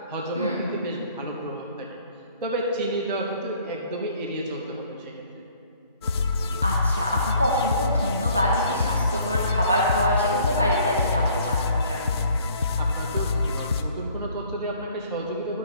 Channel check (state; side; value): inverted; both; correlation -0.57